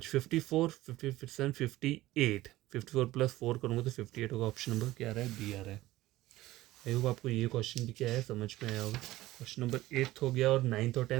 54, 57, 58, 54 प्लस 4 करूँगा तो 58 होगा। ऑप्शन नंबर क्या आ रहा है? बी आ रहा है। आई होप आपको ये क्वेश्चन भी क्या है समझ में आया होगा। क्वेश्चन नंबर 8 हो गया और 9th और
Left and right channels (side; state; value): left; quieter; 16.8 dB